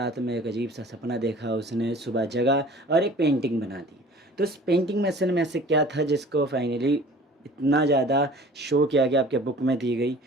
में एक अजीब सा सपना देखा उसने, सुबह जगा और एक पेंटिंग बना दी। तो उस पेंटिंग में असल में ऐसे क्या था जिसको फाइनली इतना ज़्यादा शो किया गया, आपके बुक में दी गई।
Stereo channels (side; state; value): both; normal; correlation 0.47